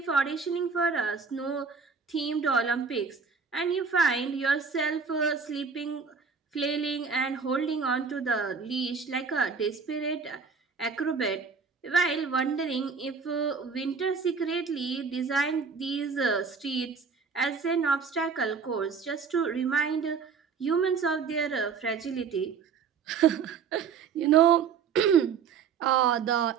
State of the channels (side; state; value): left; quieter; 5.8 dB